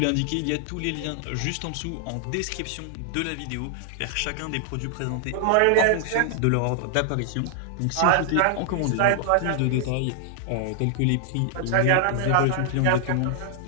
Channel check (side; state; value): both; different; correlation 0.00